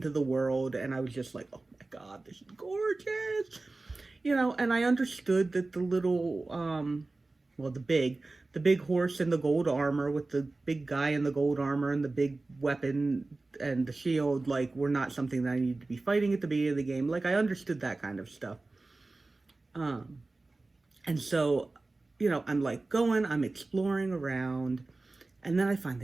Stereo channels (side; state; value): left; quieter; 3.3 dB